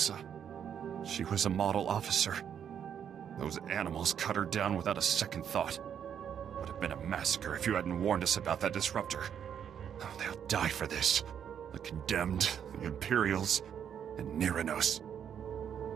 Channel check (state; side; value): quieter; left; 8.5 dB